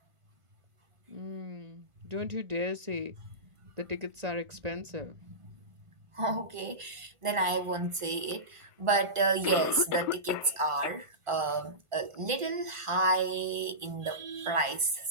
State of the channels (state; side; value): late; left; 1.5 ms